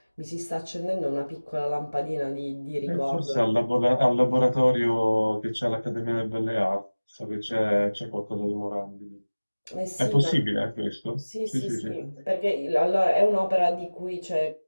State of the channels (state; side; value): inverted; both; correlation -1.00